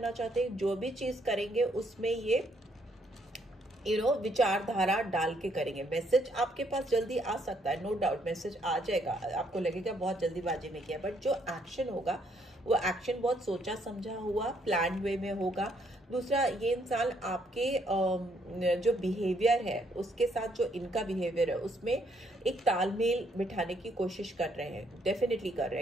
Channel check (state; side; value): normal; both; correlation 0.70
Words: चाहते। जो भी चीज़ करेंगे उसमें ये विचारधारा डाल के करेंगे। मैसेज आपके पास जल्दी आ सकता है, नो डाउट मैसेज आ जाएगा, आपको लगेगा बहुत जल्दीबाजी में किया, बट जो एक्शन होगा वो एक्शन बहुत सोचा समझा हुआ, प्लान वे में होगा। दूसरा, ये इंसान आपके जो बिहेवियर है उसके साथ जो इनका बिहेवियर है उसमें एक तालमेल बिठाने की कोशिश कर रहे हैं, डेफिनेटली कर रहे